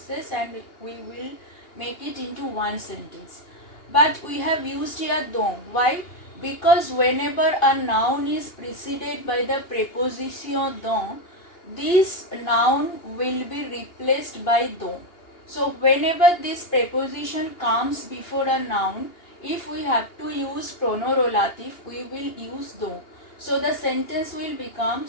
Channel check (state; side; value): late; right; 2.8 ms